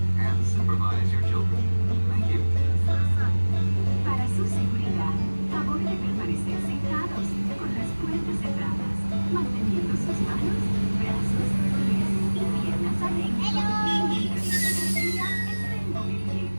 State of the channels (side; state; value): both; inverted; correlation -1.00